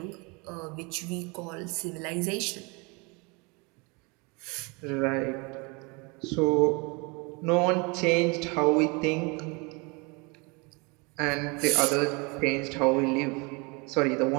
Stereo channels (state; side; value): quieter; left; 29.1 dB